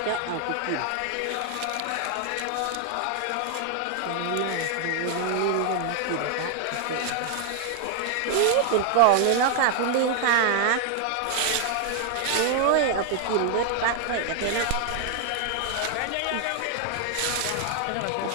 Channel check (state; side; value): different; both; correlation 0.00